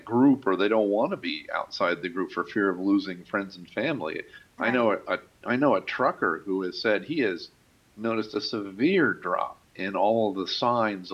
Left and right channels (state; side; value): identical; both; correlation 1.00